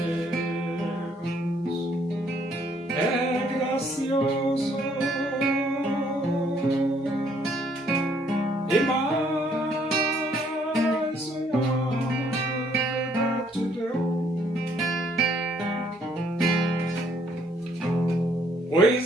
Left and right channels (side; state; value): both; normal; correlation 0.66